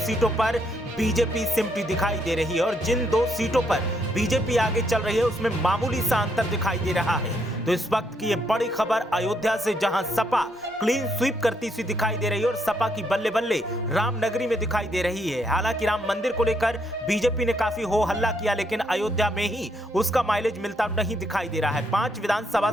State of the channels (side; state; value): both; normal; correlation 0.74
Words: सीटों पर बीजेपी सिमटी दिखाई दे रही है। और जिन 2 सीटों पर बीजेपी आगे चल रही है उसमें मामूली सा अंतर दिखाई दे रहा है। तो इस वक्त की ये बड़ी खबर अयोध्या से, जहां सपा क्लीन स्वीप करती सी दिखाई दे रही है और सपा की बल्ले बल्ले रामनगरी में दिखाई दे रही है। हालांकि राम मंदिर को लेकर बीजेपी ने काफी हो हल्ला किया, लेकिन अयोध्या में ही उसका माइलेज मिलता नहीं दिखाई दे रहा है। 5 विधानसभा